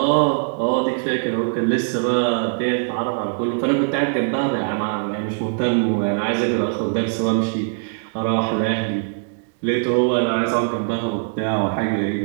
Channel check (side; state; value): left; silent; digital silence